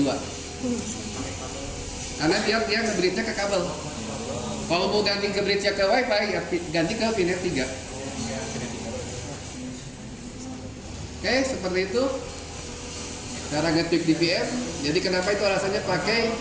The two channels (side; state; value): both; identical; correlation 1.00